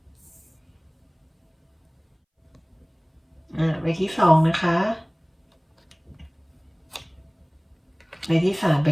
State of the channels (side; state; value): both; identical; correlation 1.00